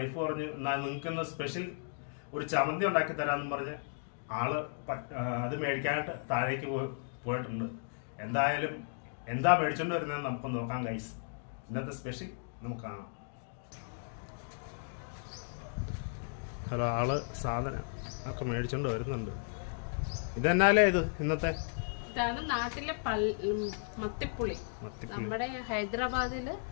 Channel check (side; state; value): right; silent; digital silence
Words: പറഞ്ഞു, എന്നാൽ നിങ്ങൾക്കിന്ന് സ്പെഷ്യൽ ഒരു ചമ്മന്തി ഉണ്ടാക്കി തരാമെന്ന് പറഞ്ഞ് ആള് അത് മേടിക്കാനായിട്ട് താഴേക്ക് പോയിട്ടുണ്ട്. എന്തായാലും എന്താ മേടിച്ചോണ്ട് വരുന്നത് നമുക്ക് നോക്കാം ഗൈസ്. ഇന്നത്തെ സ്പെഷ്യൽ നമുക്ക് കാണാം. ഹലോ, ആള് സാധനം ഒക്കെ മേടിച്ചോണ്ട് വരുന്നുണ്ട്. ഇതെന്നാലേ ഇത് ഇന്നത്തെ ഇതാണ് നാട്ടിലെ മത്തിപ്പുളി. നമ്മുടെ ഹൈദരാബാദില്